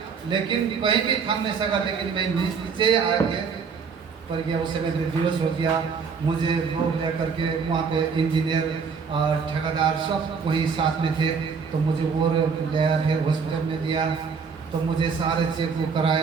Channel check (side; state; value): left; quieter; 5.7 dB